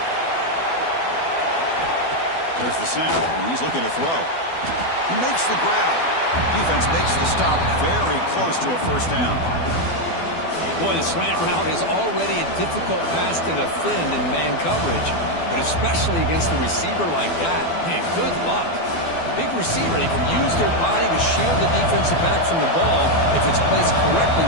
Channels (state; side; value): late; right; 12 ms